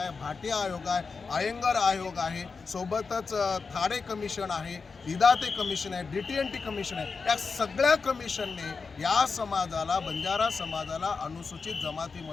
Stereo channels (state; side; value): quieter; right; 4.8 dB